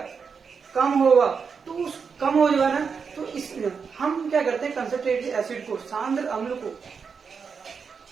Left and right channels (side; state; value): left; quieter; 5.8 dB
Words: कम होगा, तो उस कम हो जाएगा ना, तो इसमें हम क्या करते हैं, कंसंट्रेटेड एसिड को, सांद्र अम्ल को,